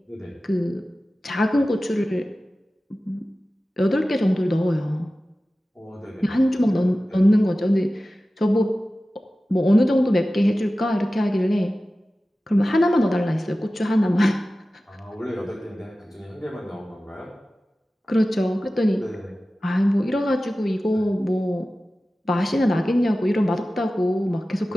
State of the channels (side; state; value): both; normal; correlation 0.95